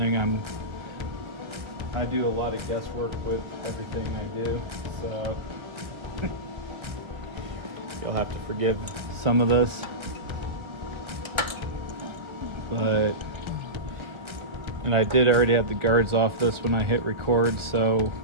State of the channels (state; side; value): late; left; 1.3 ms